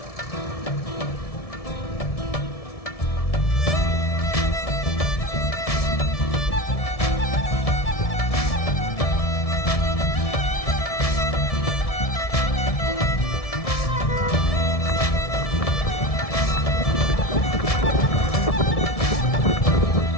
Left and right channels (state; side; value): late; right; 1.7 ms